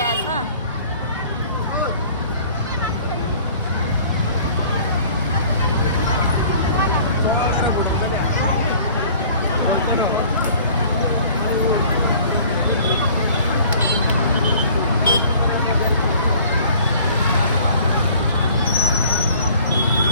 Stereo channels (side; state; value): both; inverted; correlation -0.51